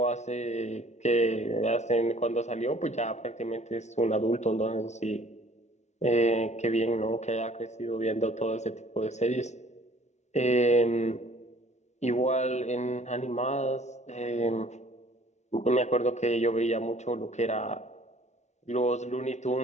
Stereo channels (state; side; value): late; right; 0.33 ms